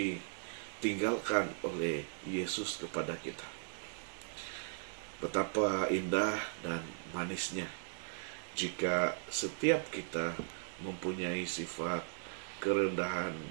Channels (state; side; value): silent; left; digital silence